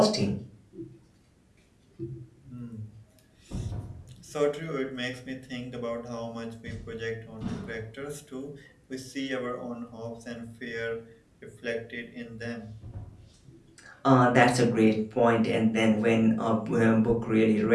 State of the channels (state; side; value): identical; both; correlation 1.00